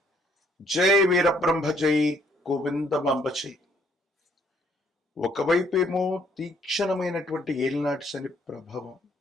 జై వీరబ్రహ్మ జై గోవిందమాంబ జై. ఒకవైపేమో తీక్షణమైనటువంటి ఏలినాటి శని ప్రభావం,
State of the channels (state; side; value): normal; both; correlation 0.66